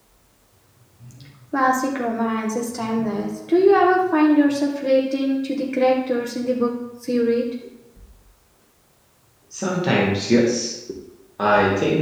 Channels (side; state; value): both; identical; correlation 1.00